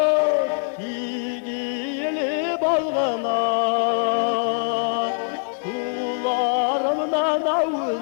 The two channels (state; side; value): silent; right; digital silence